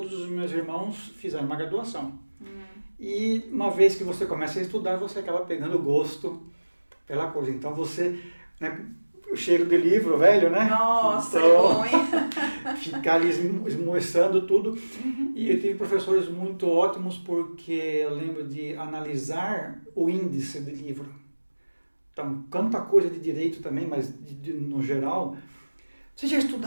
os meus irmãos fizeram uma graduação. E uma vez que você começa a estudar, você acaba pegando gosto pela coisa. Então, você, né, o cheiro de livro velho, né? Nossa, então, é bom, hein? Ficar ali esmoçando tudo. E eu tive professores muito ótimos, porque eu lembro de analisar o índice de livro. Então, quanta coisa de direito também, mas no geral. Vocês já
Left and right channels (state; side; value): inverted; both; correlation -1.00